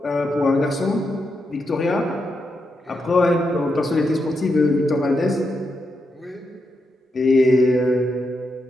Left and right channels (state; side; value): normal; both; correlation 0.84